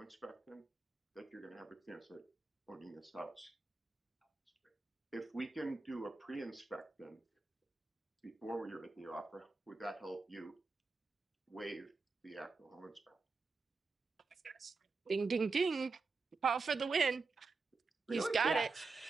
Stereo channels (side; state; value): left; quieter; 4.1 dB